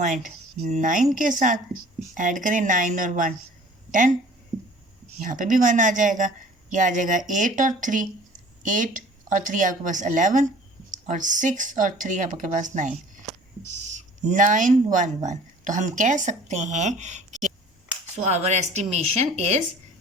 के साथ। ऐड करें 9 और 1 10, यहाँ पे भी 1 आ जाएगा, ये आ जाएगा 8 और 3, 8 और 3 आपके पास 11 और 6 और 3 आपके पास 9, 911। तो हम कह सकते हैं कि so our estimation is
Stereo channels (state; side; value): normal; both; correlation 0.49